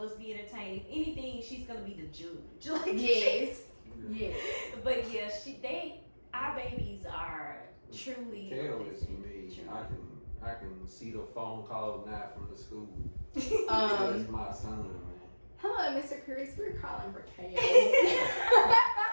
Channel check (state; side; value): inverted; both; correlation -1.00